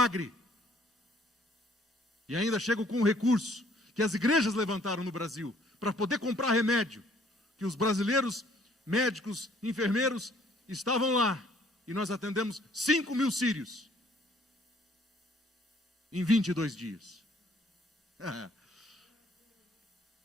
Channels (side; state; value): both; normal; correlation 0.61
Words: E ainda chego com um recurso que as igrejas levantaram no Brasil, para poder comprar remédio, que os brasileiros, médicos, enfermeiros, estavam lá, e nós atendemos 5.000 sírios, em 22 dias.